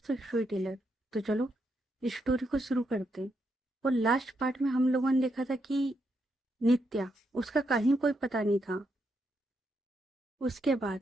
स्टोरी टेलर। तो चलो इस स्टोरी को शुरू करते हैं। और लास्ट पार्ट में हम लोगों ने देखा था कि नित्या, उसका कहीं कोई पता नहीं था। उसके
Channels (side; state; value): both; normal; correlation 0.80